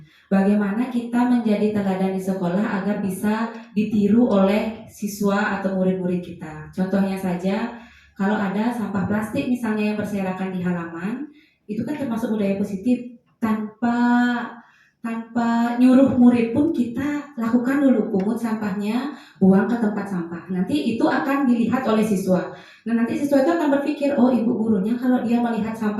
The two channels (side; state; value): both; identical; correlation 1.00